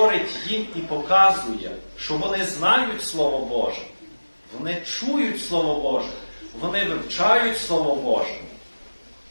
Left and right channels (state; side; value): inverted; both; correlation -1.00